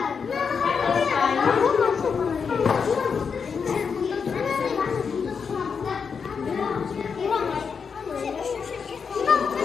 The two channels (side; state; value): right; quieter; 6.0 dB